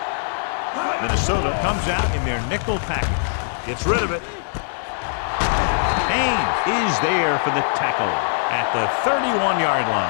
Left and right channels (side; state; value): right; silent; digital silence